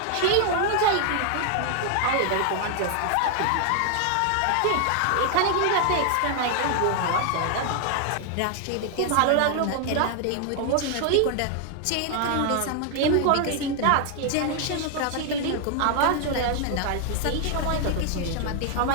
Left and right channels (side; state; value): both; different; correlation 0.00